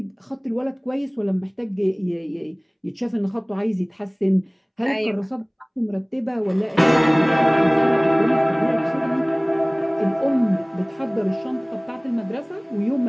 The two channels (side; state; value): both; identical; correlation 1.00